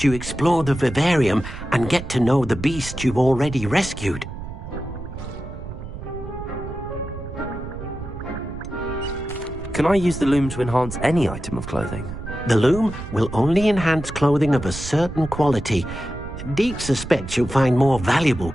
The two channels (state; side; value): noise; right; rumble, 10 dB below the sound